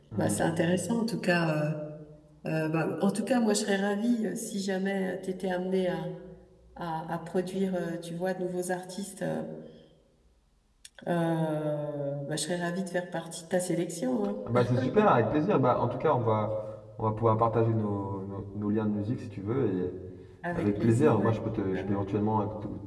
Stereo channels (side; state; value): both; identical; correlation 1.00